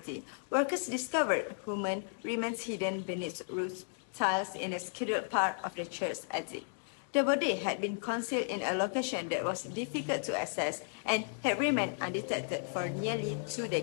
workers discovered human remains hidden beneath roof tiles in a scheduled part of the church's attic. The body had been concealed in a location that was difficult to access and had remained undetected for nearly 2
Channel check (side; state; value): right; silent; digital silence